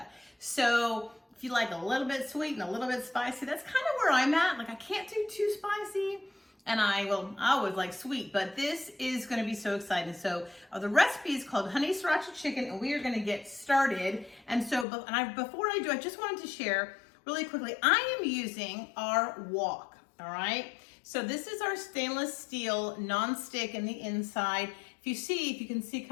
So if you like a little bit sweet and a little bit spicy, that's kind of where I'm at. Like I can't do too spicy. And I always like sweet, but this is gonna be so exciting. So the recipe is called honey sriracha chicken, and we are gonna get started. And so, before I do, I just wanted to share really quickly, I am using our wok, all right? So this is our stainless steel non-stick in the inside. If you can see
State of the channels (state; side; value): drops out; right; at 14.9 s